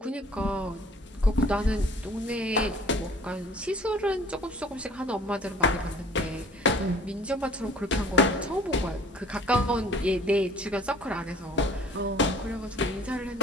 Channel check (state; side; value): normal; both; correlation 0.51